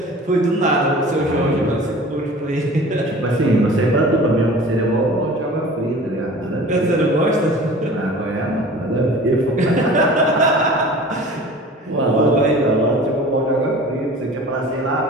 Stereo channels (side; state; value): both; normal; correlation 0.42